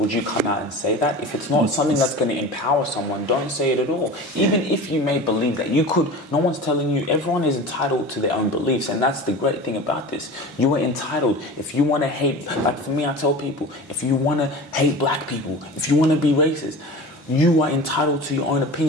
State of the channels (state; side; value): normal; both; correlation 0.34